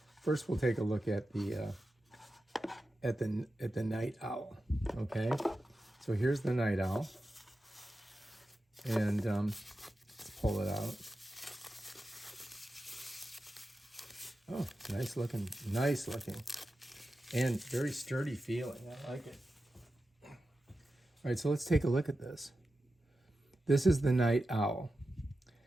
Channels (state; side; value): normal; both; correlation 0.92